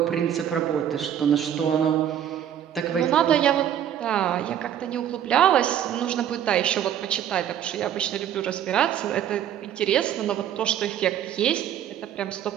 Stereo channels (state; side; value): quieter; left; 10.1 dB